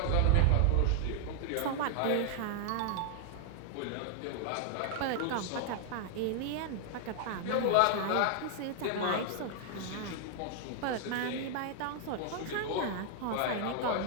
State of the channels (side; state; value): both; different; correlation 0.00